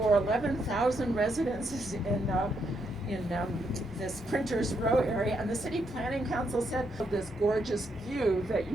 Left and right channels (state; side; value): normal; both; correlation 0.77